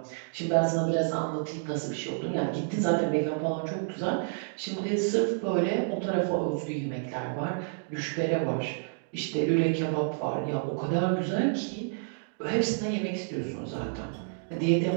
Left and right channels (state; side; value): silent; left; digital silence